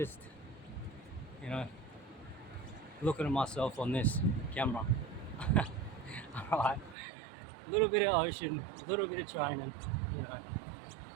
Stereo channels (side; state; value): left; drops out; at 7.0 s